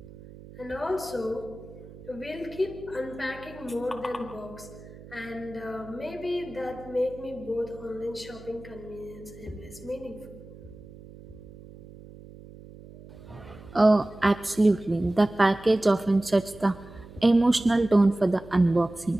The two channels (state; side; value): noise; right; hum, 18 dB below the sound